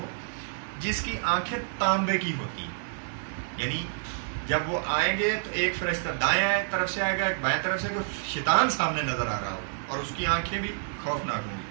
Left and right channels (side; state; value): left; silent; digital silence